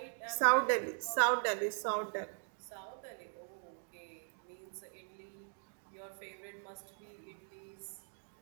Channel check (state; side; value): silent; left; 51 dB below the other